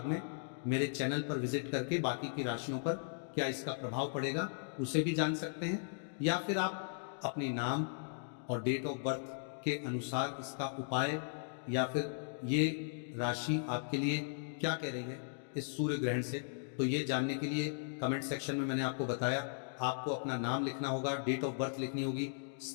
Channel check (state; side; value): silent; right; digital silence